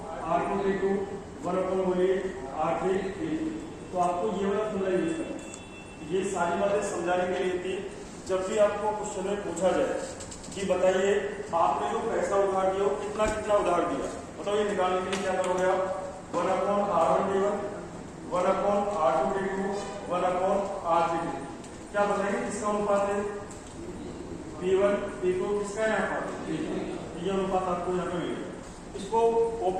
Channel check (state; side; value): identical; both; correlation 1.00